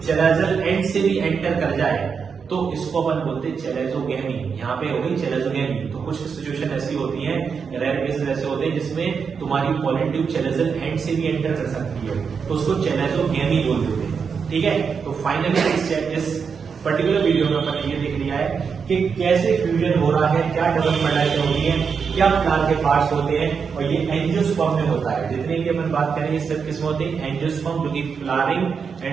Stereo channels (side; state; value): left; quieter; 6.0 dB